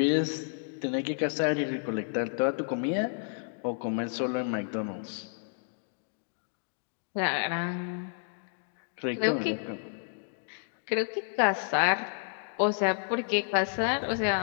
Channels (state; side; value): silent; right; digital silence